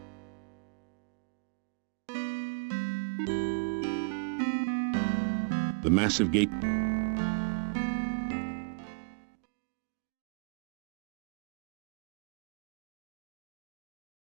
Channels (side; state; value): left; quieter; 37.7 dB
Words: the massive gate